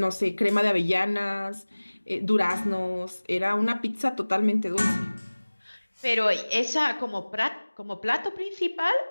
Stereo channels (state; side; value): inverted; both; correlation -1.00